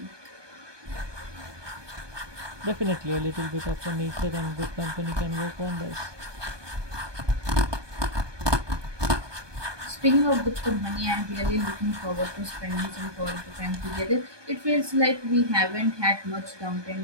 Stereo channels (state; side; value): late; left; 1.2 ms